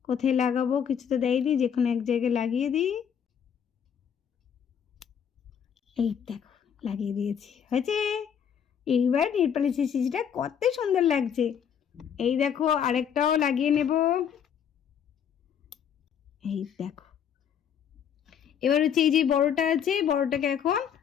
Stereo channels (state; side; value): quieter; right; 8.2 dB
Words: কোথায় লাগাবো কিছু তো দেয়নি, যে কোনো এক জায়গায় লাগিয়ে দিই। এই দেখো লাগিয়ে দিয়েছি, হয়েছে। এইবার নেলপালিশের শিশিটা কত সুন্দর লাগছে। এই দেখো আরেকটাও লাগিয়ে নেব। এই দেখো এবার হচ্ছে এই যে বড়টা আছে, বড়টাকে এখন